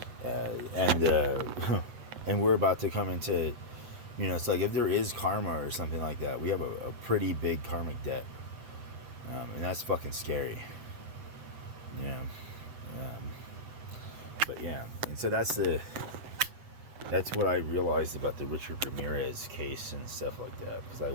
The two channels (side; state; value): left; late; 8.2 ms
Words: we're about to come into, you know, it's like if there is karma or something like that, we have a pretty big karmic debt. And that's fucking scary. Yeah. But yeah, and so that's what I realized about the Richard Ramirez case and stuff like that, because I